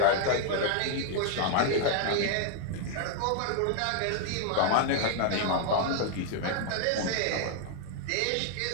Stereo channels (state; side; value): different; both; correlation 0.00